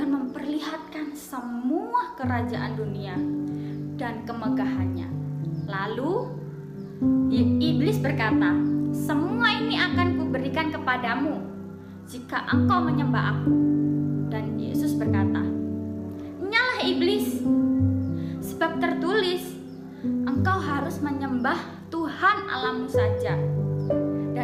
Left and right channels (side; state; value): both; identical; correlation 1.00